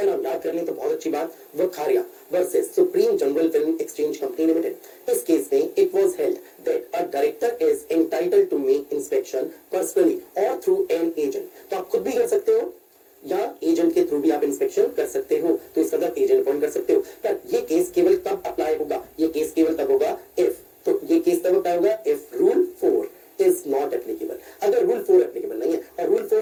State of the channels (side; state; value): both; identical; correlation 1.00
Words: नाम याद कर लें तो बहुत अच्छी बात, Vakharia versus Supreme General Film Exchange Company Limited. इस केस में it was held that a director director is entitled to make inspection personally और थ्रू एन एजेंट। तो आप खुद भी कर सकते हो या एजेंट के थ्रू भी आप इंस्पेक्शन कर सकते हो, तो इसका मतलब एजेंट अपॉइंट कर सकते हो। पर ये केस केवल तब अप्लाई होगा, ये केस केवल तब होगा इफ, तो ये केस तब अप्लाई होगा if rule 4 is not applicable. अगर रूल 4 एप्लीकेबल नहीं है, और रूल